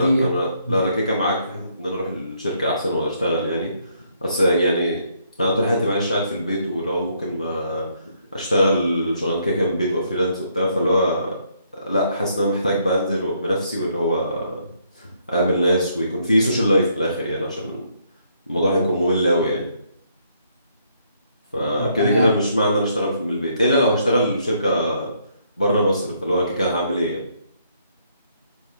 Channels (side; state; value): both; inverted; correlation -0.71